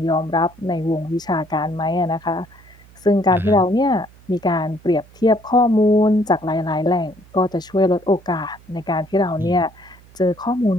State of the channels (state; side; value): noise; right; hum, 25 dB below the sound